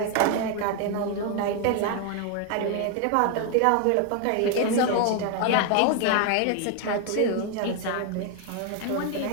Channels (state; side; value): different; both; correlation 0.01